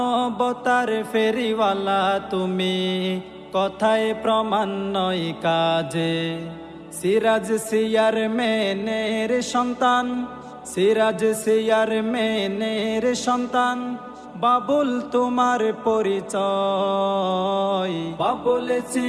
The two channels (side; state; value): both; identical; correlation 1.00